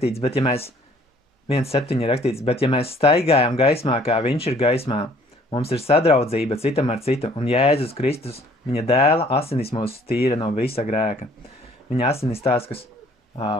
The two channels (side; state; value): both; normal; correlation 0.57